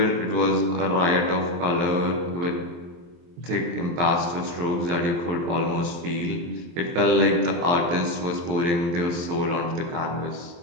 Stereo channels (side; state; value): left; late; 23 ms